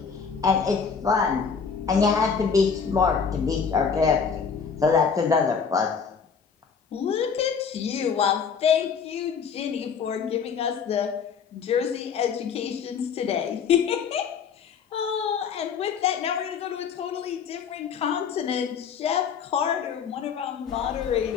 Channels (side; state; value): right; quieter; 6.3 dB